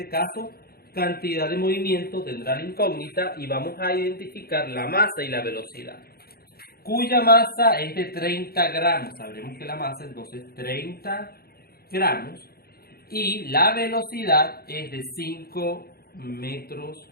caso, cantidad de movimiento tendrá la incógnita y vamos a identificar la masa y la velocidad, cuya masa es de 30 gramos. Sabremos que la masa entonces 30 gramos y la velocidad es de 5 metros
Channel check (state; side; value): late; right; 0.45 ms